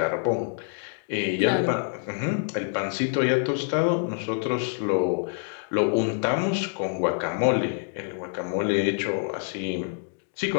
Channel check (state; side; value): silent; right; digital silence